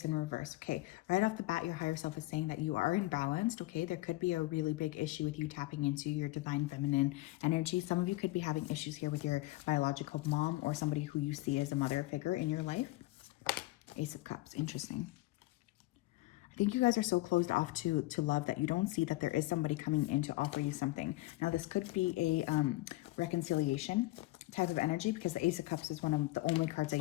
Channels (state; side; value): quieter; right; 19.5 dB